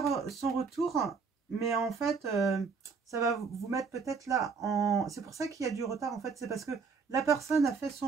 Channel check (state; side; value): quieter; left; 5.2 dB